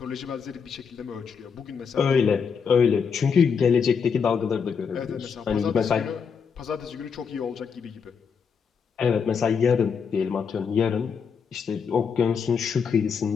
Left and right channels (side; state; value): right; quieter; 6.3 dB